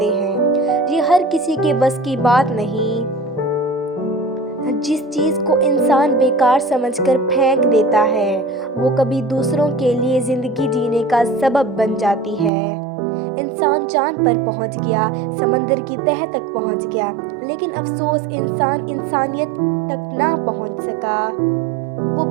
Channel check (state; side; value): drops out; left; at 12.5 s